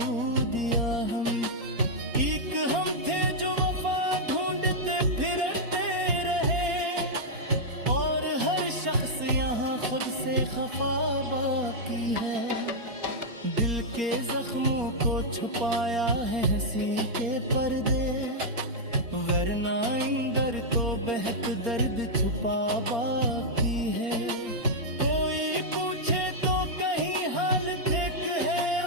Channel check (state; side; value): late; left; 4.3 ms